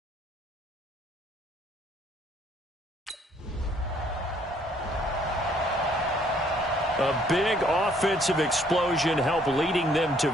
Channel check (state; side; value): normal; both; correlation 0.63